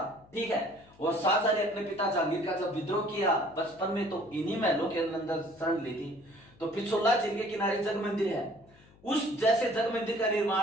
ठीक है, और शाहजहां ने अपने पिता जहांगीर का जब विद्रोह किया बचपन में तो इन्हीं महलों के अंदर शरण ली थी। तो पिछोला झील के किनारे जग मंदिर है, उस जैसे जग मंदिर का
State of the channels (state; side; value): noise; left; hum, 27 dB below the sound